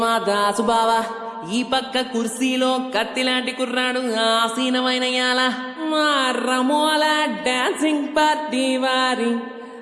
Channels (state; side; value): identical; both; correlation 1.00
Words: మా దాసు బావ, ఈ పక్క కుర్సీలో కత్తిలాంటి కుర్రాడు ఆసీనమైన యాల మా రమోల డాన్సింగ్ పార్టీ వారి